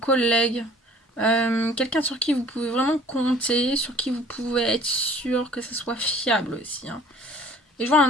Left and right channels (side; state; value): both; normal; correlation 0.51